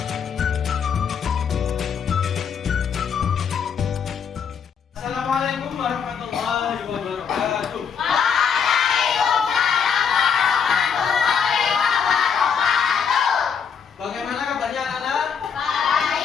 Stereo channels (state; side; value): quieter; right; 6.9 dB